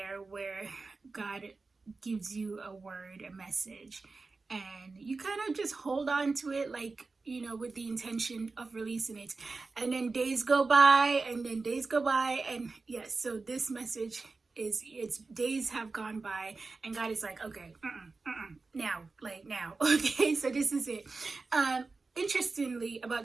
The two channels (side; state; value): left; quieter; 3.9 dB